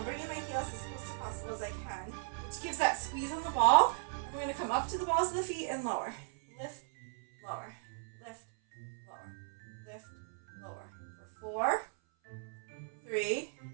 bringing my heels as close to possible as I can, which gives that squeeze on the ball. And we're going to come up to the balls of the feet and lower. Lift, lower. Lift, lower. Lift, lower. For 4, 3,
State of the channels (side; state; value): left; silent; 54 dB below the other